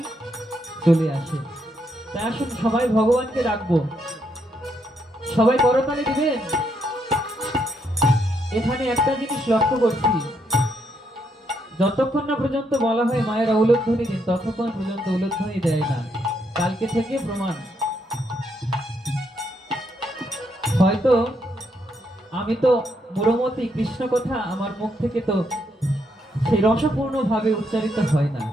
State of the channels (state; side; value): normal; both; correlation 0.77